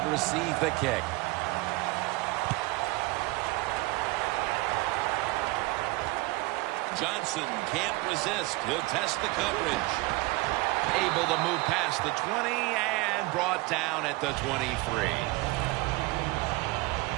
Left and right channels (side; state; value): left; quieter; 22.4 dB